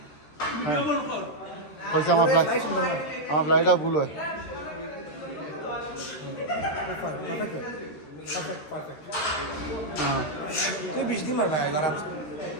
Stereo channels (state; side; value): late; right; 13 ms